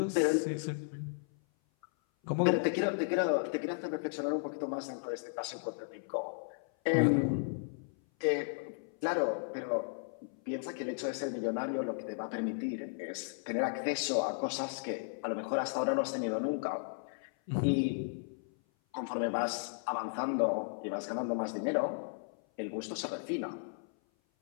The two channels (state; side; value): silent; right; 55 dB below the other